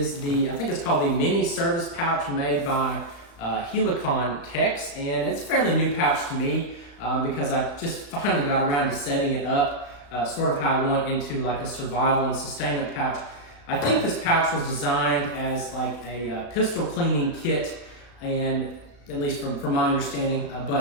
I think it's called the mini service pouch made by Helikon Tex, and it's a fairly new pouch to me. Because I just finally got around to setting it up sort of how I want into like a survival and sustainment pouch. I think this pouch was designed as like a pistol cleaning kit, and at least from my understanding,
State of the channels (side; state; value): right; late; 35 ms